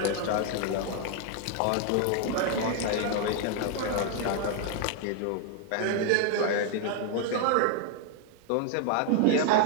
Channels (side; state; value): both; different; correlation 0.00